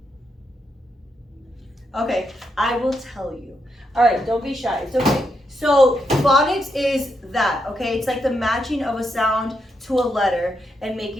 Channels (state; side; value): normal; both; correlation 0.81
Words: Okay, I will tell you. All right, don't be shy. It's okay. So phonics is that, okay? It's like the matching of a sound to a letter and